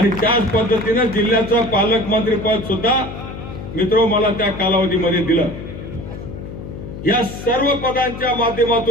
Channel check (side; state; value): left; noise; hum, 10 dB below the sound